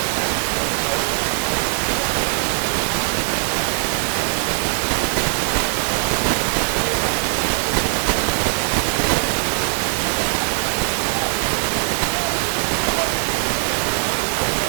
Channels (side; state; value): left; silent; 65 dB below the other